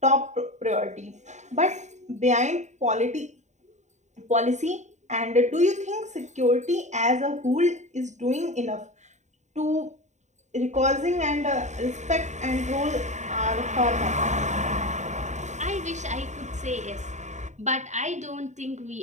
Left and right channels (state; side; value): late; left; 0.34 ms